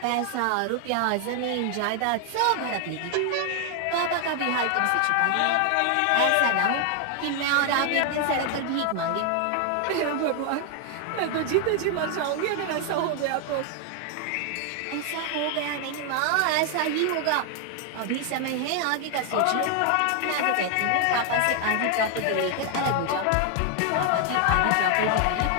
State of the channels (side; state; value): both; different; correlation 0.00